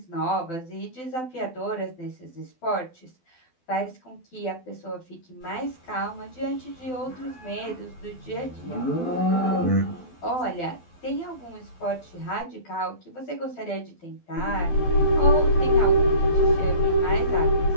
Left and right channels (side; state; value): right; late; 12 ms